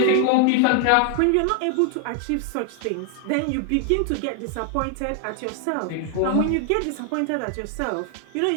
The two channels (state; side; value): different; both; correlation 0.00